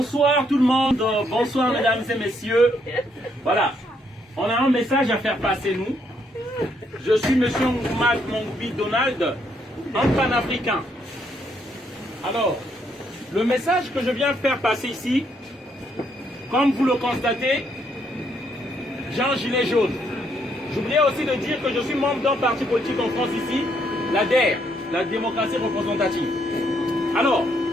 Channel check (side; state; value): both; normal; correlation 0.73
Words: tout le monde, bonsoir mesdames et messieurs. Voilà, on a un message à faire passer nous. Je suis monsieur Nkouma Mongbi Donald, un panafricain. Alors, le message que je viens faire passer ici, comme vous le constatez, j'ai un gilet jaune. J'oubliais aussi de dire que je suis membre d'un parti politique en France ici, la DER, la démocratie représentative. Alors,